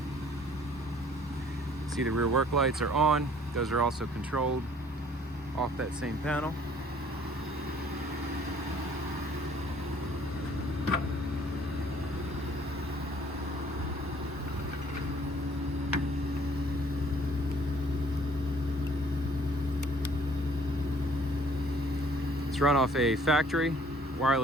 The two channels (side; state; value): both; normal; correlation 0.57